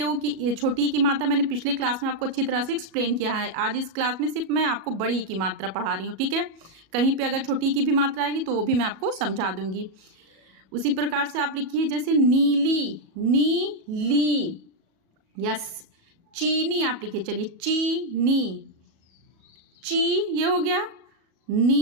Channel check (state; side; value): late; left; 37 ms